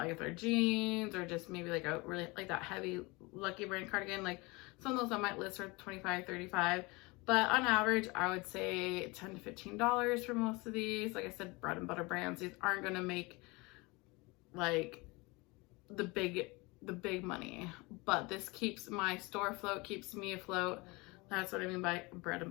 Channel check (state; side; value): quieter; right; 25.3 dB